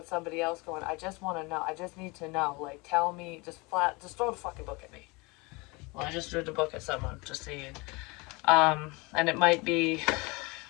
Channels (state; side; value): quieter; right; 26.3 dB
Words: somebody else going, I just want to know. I just need to know. Like, tell me, just throw the fucking book at me. Well, I just threw the book at someone, just saying. And it might be